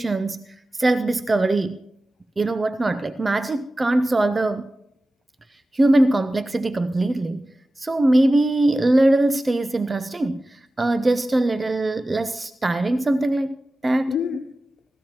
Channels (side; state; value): both; normal; correlation 0.95